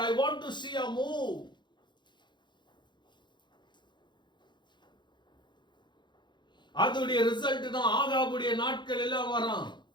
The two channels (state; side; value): late; right; 0.22 ms